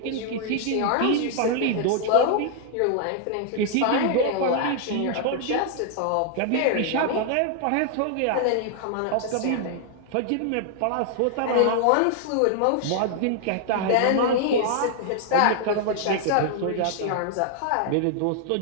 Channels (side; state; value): both; different; correlation 0.00